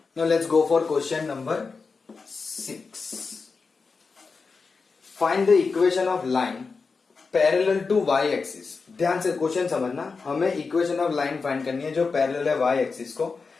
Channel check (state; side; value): quieter; right; 4.6 dB